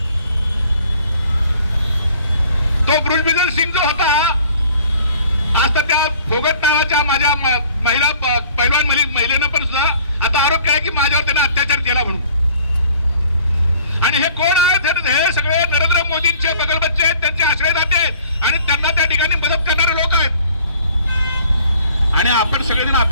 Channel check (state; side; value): inverted; both; correlation -0.54